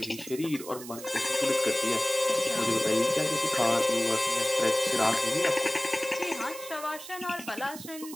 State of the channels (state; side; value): noise; right; hiss, 13 dB below the sound